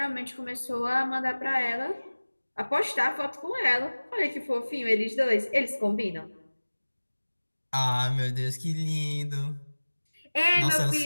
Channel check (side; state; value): both; inverted; correlation -1.00